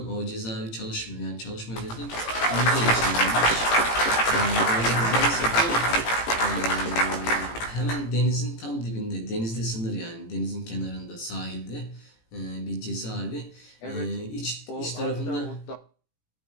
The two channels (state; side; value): late; right; 18 ms